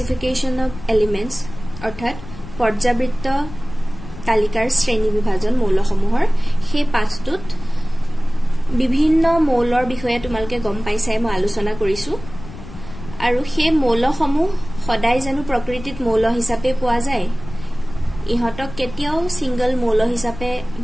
অফ এলিমেন্টস অৰ্থাৎ পৰ্যাবৃত্ত তালিকাৰ শ্ৰেণী বিভাজন মৌলসমূহৰ সেই পাঠটোত বিভিন্ন মৌলৰ বিষয়ে তোমালোকে গম পাইছাই মই আলোচনা কৰিছো আৰু সেই মৌলসমূহ সদায় জানো প্ৰকৃতিত মৌল হিচাপে পোৱা যায় ইহতক কেতিয়াও সিঙ্গল মৌল হিচাপে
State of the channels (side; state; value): left; noise; rumble, 14 dB below the sound